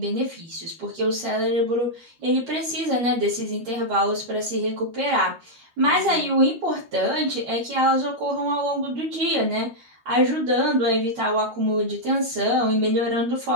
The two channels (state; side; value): late; left; 13 ms